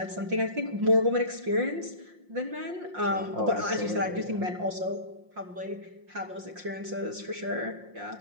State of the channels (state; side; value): late; left; 5.6 ms